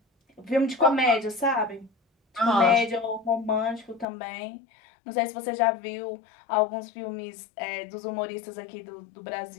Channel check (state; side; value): drops out; right; at 4.0 s